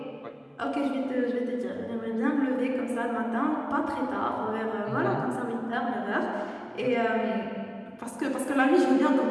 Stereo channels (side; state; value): both; identical; correlation 1.00